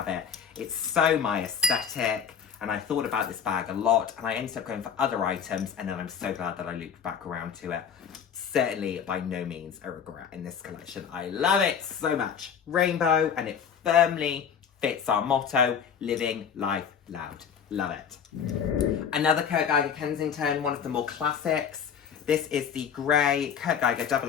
it. It's so my aesthetic, and I thought about this bag a lot, and I ended up going for other items, and then I'm so glad that I looped back around to it. Certainly by no means a regret in this collection. I love it so much. Rainbow, and it firmly fits our motto, living life loud. Love it. Another Kurt Geiger Kensington, one of the more classics. This is the grey Kurt Geiger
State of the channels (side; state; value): right; quieter; 7.5 dB